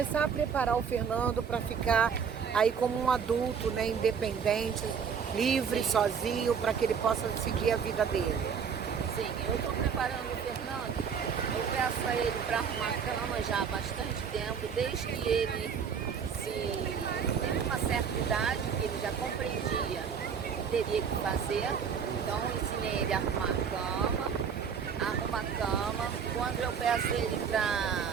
a preparar o Fernando para ficar aí como um adulto, né? Independente, livre, sozinho, para que ele possa seguir a vida dele? Sim, eu estou preparando o Fernando. Eu peço a ele para arrumar a cama já há bastante tempo, desde que ele teve uma certa idade, que ele já compreendia o que teria que fazer. Então eu ensinei ele a arrumar a cama. Quando eu peço ele para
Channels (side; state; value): left; quieter; 6.8 dB